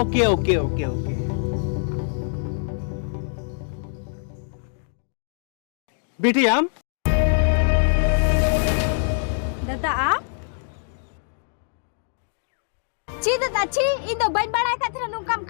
ओके ओके ओके बेटी आम दादा आप ची दादा ची इन दो बन बड़ा कथरा नु काम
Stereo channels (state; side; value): silent; right; digital silence